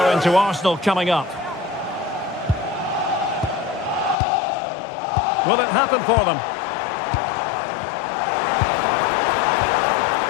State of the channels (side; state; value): right; drops out; at 4.2 s